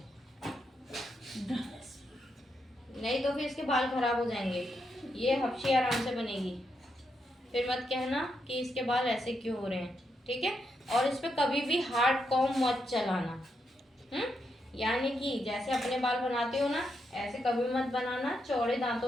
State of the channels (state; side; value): normal; both; correlation 0.82